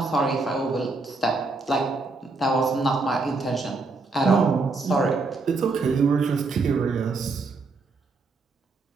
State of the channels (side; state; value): left; quieter; 3.7 dB